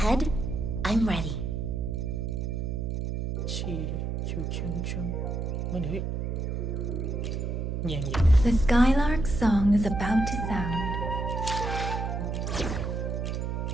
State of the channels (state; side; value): noise; right; hum, 2 dB below the sound